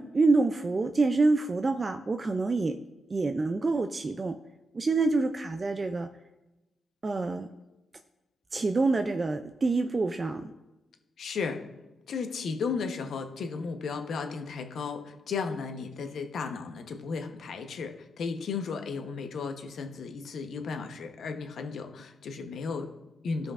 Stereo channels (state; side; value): normal; both; correlation 0.85